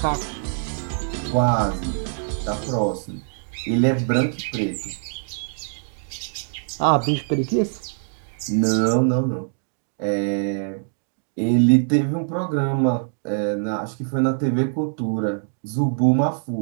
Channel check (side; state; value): left; silent; digital silence